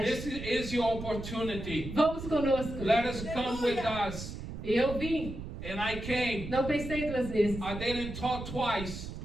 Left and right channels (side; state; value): right; noise; rumble, 8 dB below the sound